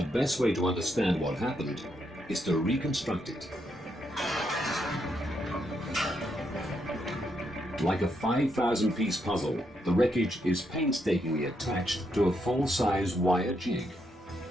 best way to understand what happened is to reconstruct it. Like a 5,000-piece puzzle, the wreckage is painstakingly attached to a full-size wire jig.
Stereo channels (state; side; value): normal; both; correlation 0.78